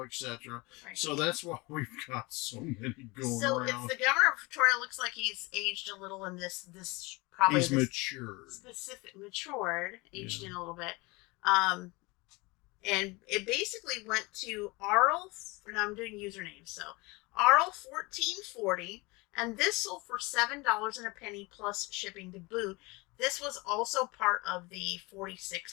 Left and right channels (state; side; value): quieter; right; 24.8 dB